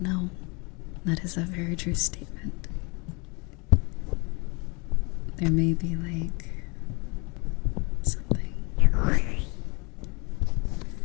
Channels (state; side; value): quieter; right; 29.5 dB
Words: know. That is a very true statement. There may be like something.